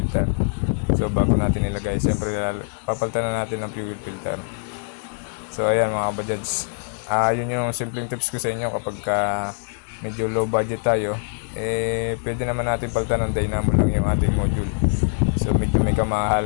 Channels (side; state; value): right; silent; digital silence